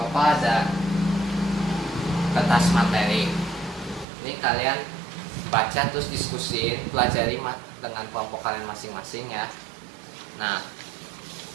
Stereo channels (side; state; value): left; drops out; at 4.0 s